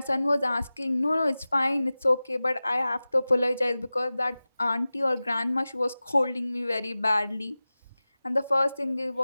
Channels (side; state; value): both; inverted; correlation -0.97